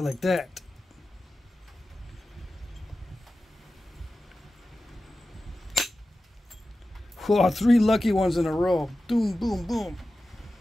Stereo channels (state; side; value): normal; both; correlation 0.94